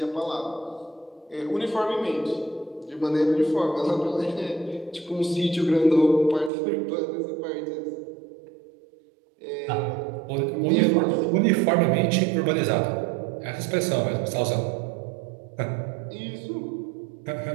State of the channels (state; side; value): drops out; left; at 6.5 s